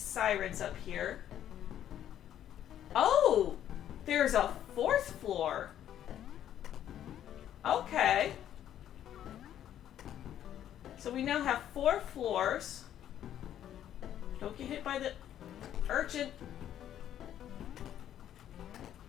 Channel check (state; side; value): quieter; right; 10.9 dB